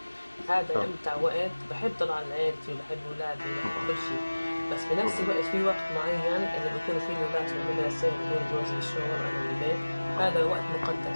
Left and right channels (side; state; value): both; inverted; correlation -1.00